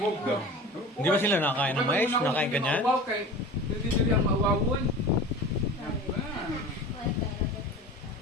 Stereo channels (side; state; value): both; normal; correlation 0.36